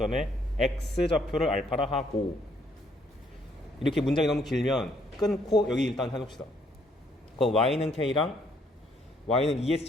x좌표를 알파라 하고 이렇게 문장이 너무 길면 끊고 여기 일단 해봅시다. 그럼 y는 K랑 y는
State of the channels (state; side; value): normal; both; correlation 0.68